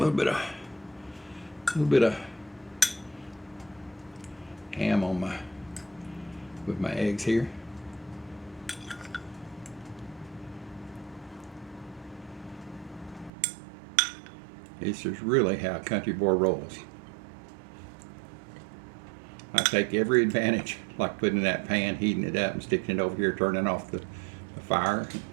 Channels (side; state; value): left; drops out; at 13.3 s